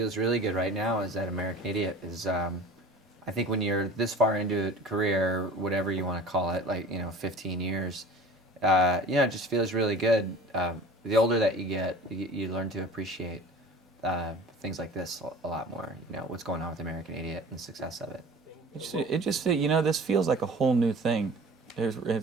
really good right now is that American Idiot is. I think when you're this far into a career, whatever you want to call it, like 15 years, it just feels really good. The older that you get, you learn to appreciate things like this a lot more. What's going on with American Idiot and the success of it. It just this feels like a whole new thing.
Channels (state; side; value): normal; both; correlation 0.41